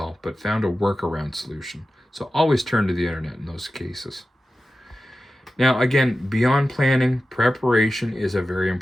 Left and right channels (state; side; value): normal; both; correlation 0.93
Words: but found a workaround solution. So always turn to the internet in those cases. Now, again, beyond planning, preparation is a very